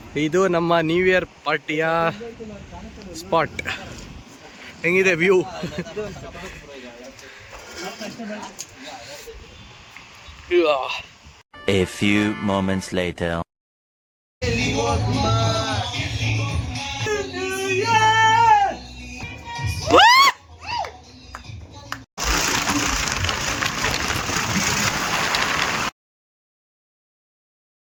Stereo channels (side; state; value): both; identical; correlation 1.00